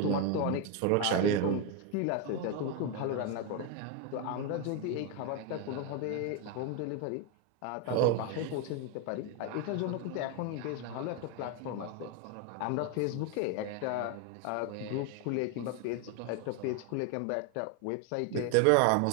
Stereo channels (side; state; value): both; different; correlation 0.02